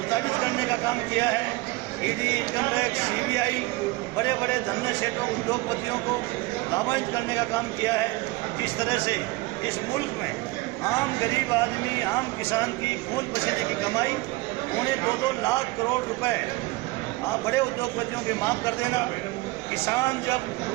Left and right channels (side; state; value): left; quieter; 21.7 dB